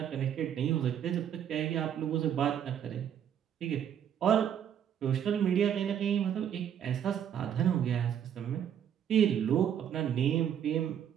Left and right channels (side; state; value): left; quieter; 9.2 dB